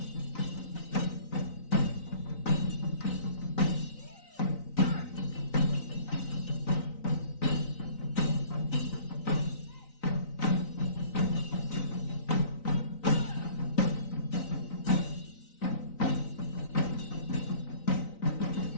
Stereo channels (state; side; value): late; right; 3.9 ms